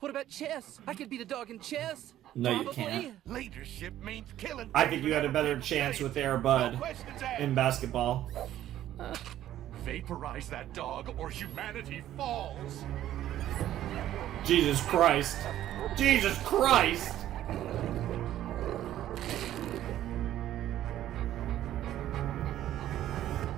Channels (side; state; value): left; quieter; 12.6 dB